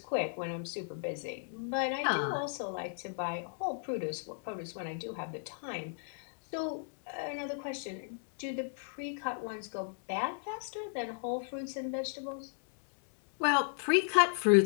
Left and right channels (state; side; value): silent; right; digital silence